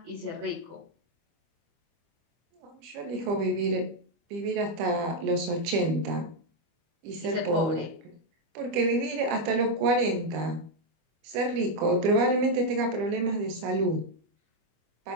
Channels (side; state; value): left; late; 25 ms